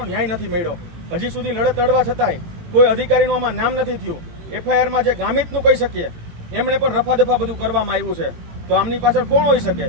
ન્યાય નથી મળ્યો. હજી સુધી લડત લડવા છતાંય કોઈ અધિકારીનું આમાં નામ નથી થયું. એફઆઈઆરમાં જે ગામિતનું કહી શકીએ એમણે પણ રફાદફા બધું કરવામાં આવ્યું છે. તો આમની પાછળ કોણ હોઈ શકે?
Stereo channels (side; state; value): left; late; 18 ms